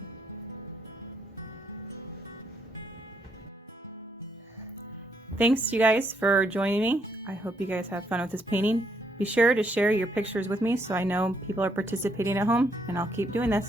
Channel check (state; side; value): normal; both; correlation 0.73